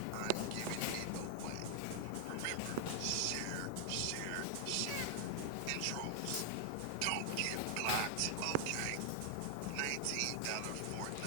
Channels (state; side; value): different; both; correlation 0.00